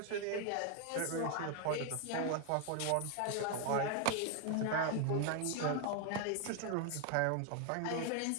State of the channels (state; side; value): different; both; correlation 0.01